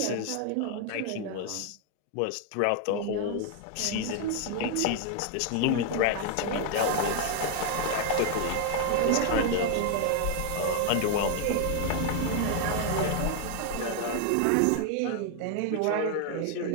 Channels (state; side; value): different; both; correlation 0.00